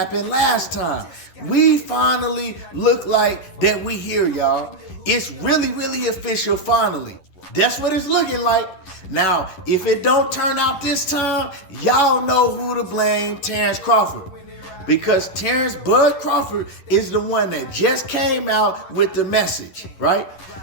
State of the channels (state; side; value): late; right; 11 ms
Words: last time. We finally look like that we here, y'all. It's really official finally. That's what it's looking like. Now, if it don't turn out this time, y'all know who to blame, Terence Crawford. Because Terence Bud Crawford is the one that just came out with the message, right?